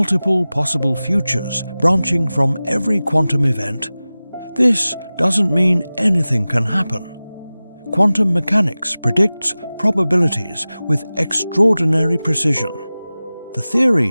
possible futures branching from every quantum event. This doesn't mean anything can happen. Quantum mechanics predicts probabilities with extraordinary precision. The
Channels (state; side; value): inverted; both; correlation -0.97